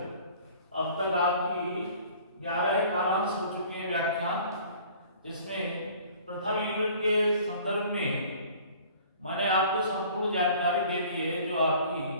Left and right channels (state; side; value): inverted; both; correlation -0.49